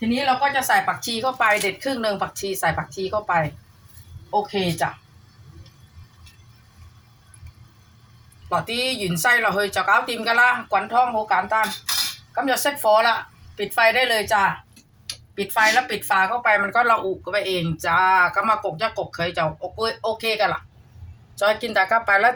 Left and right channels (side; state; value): both; identical; correlation 1.00